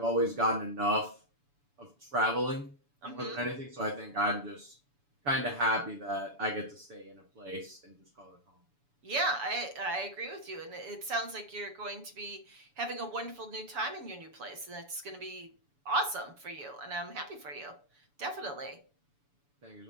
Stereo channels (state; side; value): late; left; 7.0 ms